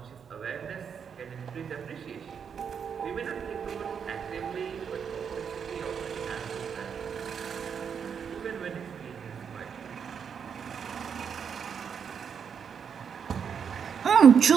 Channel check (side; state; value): left; quieter; 7.1 dB